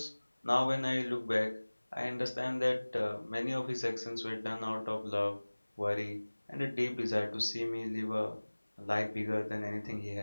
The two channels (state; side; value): inverted; both; correlation -1.00